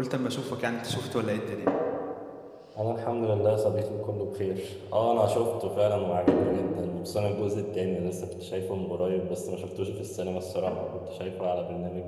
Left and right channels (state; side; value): identical; both; correlation 1.00